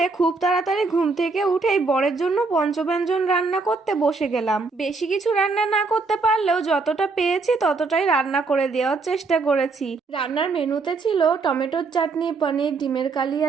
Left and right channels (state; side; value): quieter; left; 4.1 dB